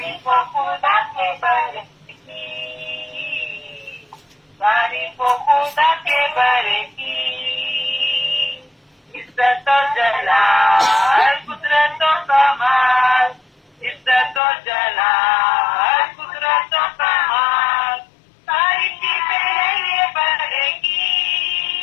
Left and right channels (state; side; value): drops out; right; at 14.4 s